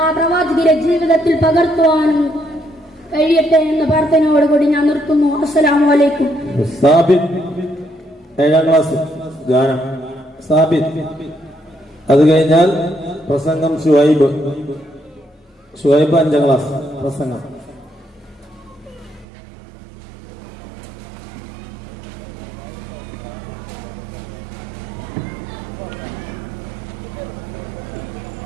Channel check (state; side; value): drops out; left; at 19.2 s